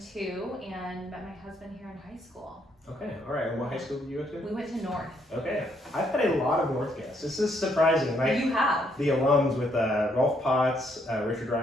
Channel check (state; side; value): normal; both; correlation 0.72